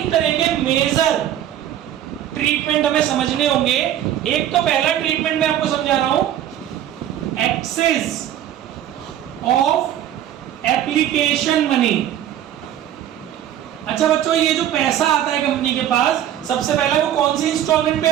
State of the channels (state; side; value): quieter; left; 11.3 dB